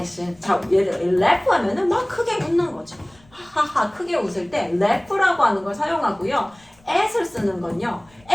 자, 예를 들어 left 하면은 막 크게 웃는 거죠. 하하 크게 웃을 때 left라고 하는 걸 사용하고요. at을 쓰는 건요.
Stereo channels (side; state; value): left; noise; rumble, 30 dB below the sound